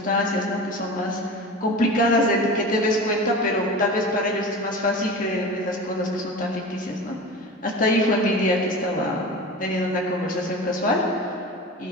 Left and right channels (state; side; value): normal; both; correlation 0.32